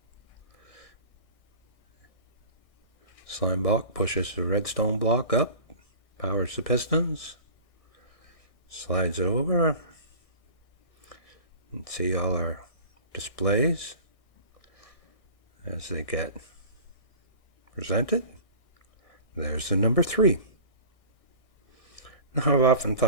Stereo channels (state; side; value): late; right; 1.6 ms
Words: Slime block pushes the redstone block up, powers the pistons, slides it over, and see all our displays as they get presented. There's the number 3. Now, I've often